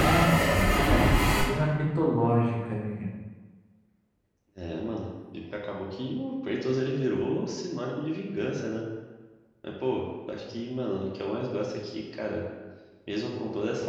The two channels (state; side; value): identical; both; correlation 1.00